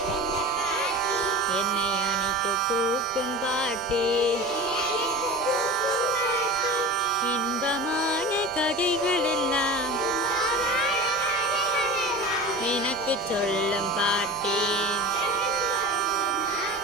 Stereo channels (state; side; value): noise; right; rumble, 24 dB below the sound